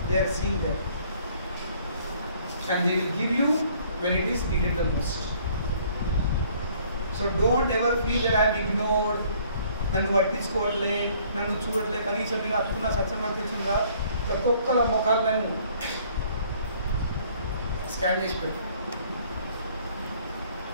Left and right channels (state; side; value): inverted; both; correlation -0.59